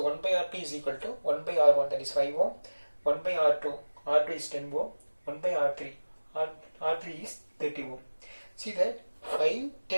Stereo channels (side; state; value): both; inverted; correlation -1.00